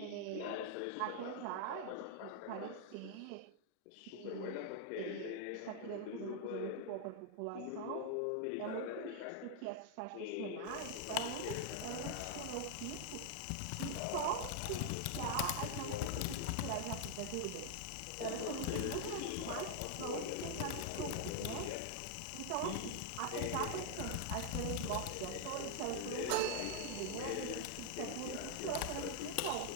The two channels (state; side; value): different; both; correlation 0.00